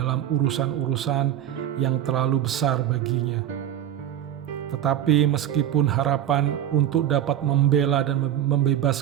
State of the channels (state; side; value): quieter; left; 11.1 dB